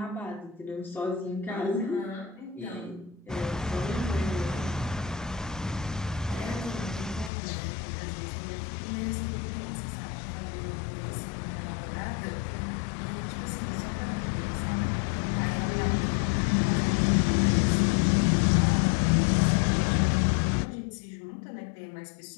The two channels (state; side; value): drops out; right; at 7.3 s